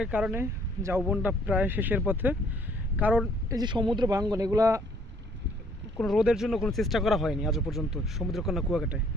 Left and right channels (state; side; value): normal; both; correlation 0.62